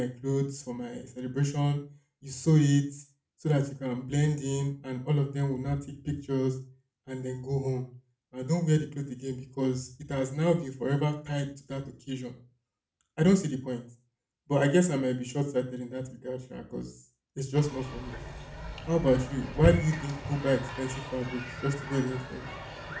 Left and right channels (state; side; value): identical; both; correlation 1.00